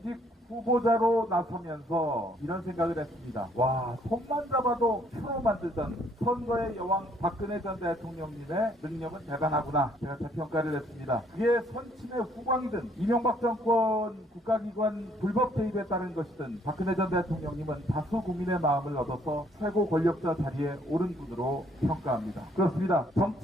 후보자로 나서면서 이런 생각을 했습니다. 와, 손만 잡아도 표로 만들던 선거의 여왕 박근혜 전 대통령님의 능력은 대단하구나. 제가 재평가를 했습니다. 그게 선친의 후광이든 이명박 정권 국가기관 불법 개입에 따른 것이든 박근혜 전 대통령님은 다수 국민의 마음을 얻어서 최고 권력자 자리에 오른 분으로 평가합니다. 그렇습니다.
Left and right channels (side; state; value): both; normal; correlation 0.65